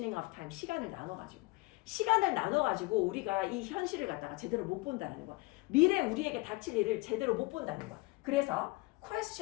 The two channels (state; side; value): quieter; right; 23.1 dB